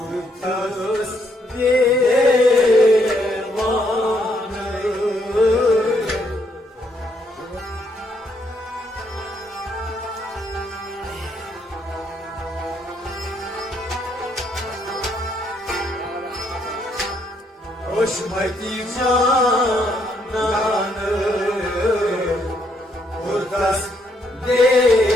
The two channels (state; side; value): normal; both; correlation 0.73